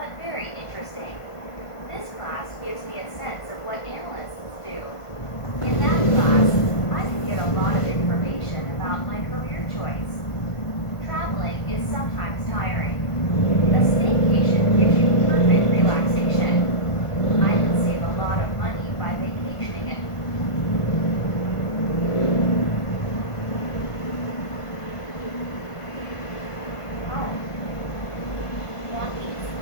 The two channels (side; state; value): right; late; 1.5 ms